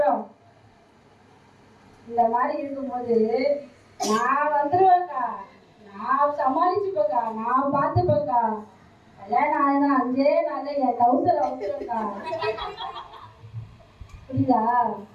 இந்த மாதிரி இருக்கும்போது நான் வந்துருவேன்க்கா, நான் சமாளிச்சுப்பேக்கா, நான் பார்த்துப்பேக்கா, கல்யாணம் ஆனா 5 நாள்ல என் டவுசர் வந்துருக்கா. புரியுதா?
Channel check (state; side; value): identical; both; correlation 1.00